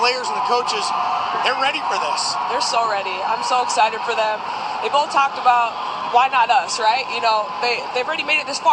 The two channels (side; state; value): both; identical; correlation 1.00